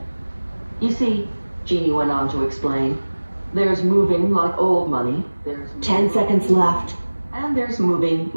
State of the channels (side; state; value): both; inverted; correlation -1.00